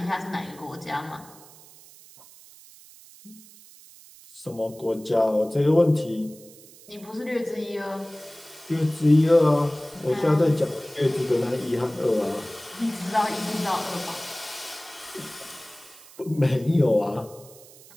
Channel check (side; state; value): right; noise; hiss, 22 dB below the sound